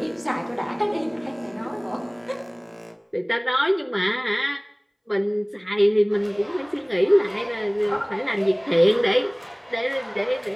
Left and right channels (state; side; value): identical; both; correlation 1.00